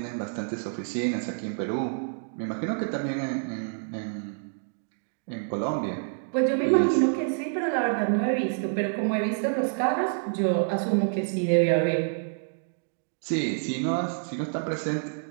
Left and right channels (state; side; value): silent; left; digital silence